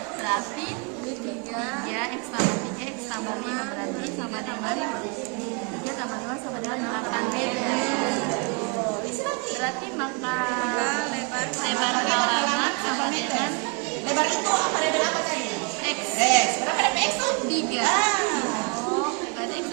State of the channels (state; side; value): quieter; left; 33.1 dB